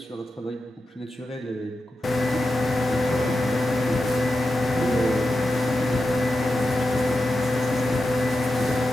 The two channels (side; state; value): both; normal; correlation 0.90